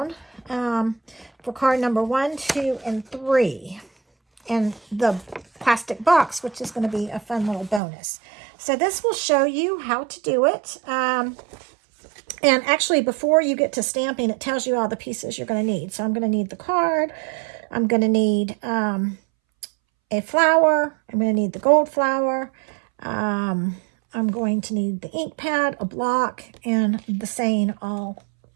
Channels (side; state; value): left; drops out; at 7.8 s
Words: for card number 1, 2, and 3. And the plastic box, which is going to be a fun little bonus. So this will show you how to do it. And actually, before you get to stamping, it tells you all the pieces you're going to need. So I'm going to need the card. I'm going to need a flower. I'm going to need the gold flower. I'm going to need the ink pad, a block, and the saying all.